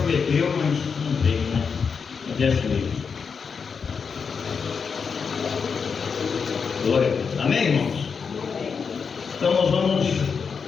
mas não veio, né? Mas é mesmo. Glória a Deus. Amém, irmãos? Então nós vamos,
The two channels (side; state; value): right; quieter; 5.9 dB